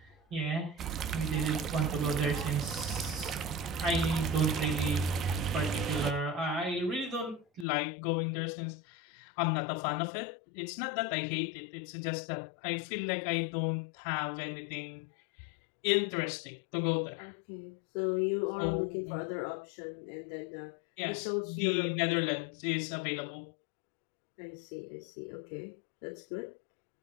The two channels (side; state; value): right; drops out; at 7.7 s